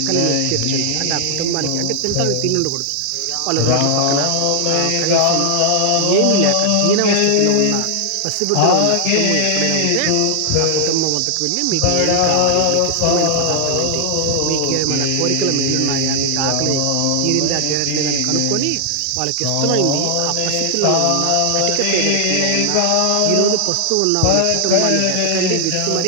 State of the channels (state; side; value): different; both; correlation 0.00